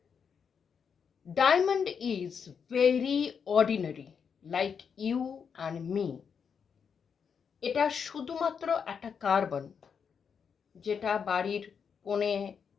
Diamond is very ordinary, like you and me. এটা শুধুমাত্র একটা carbon, যেটা বাড়ির কোণে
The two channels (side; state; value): right; quieter; 6.7 dB